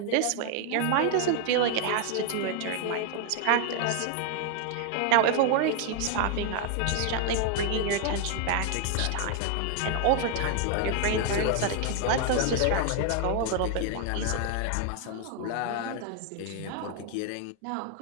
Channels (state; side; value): different; both; correlation 0.00